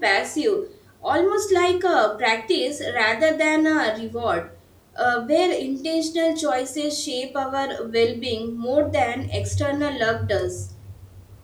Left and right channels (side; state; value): both; identical; correlation 1.00